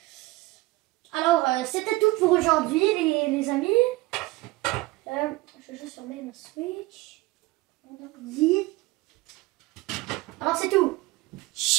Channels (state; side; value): quieter; left; 20.3 dB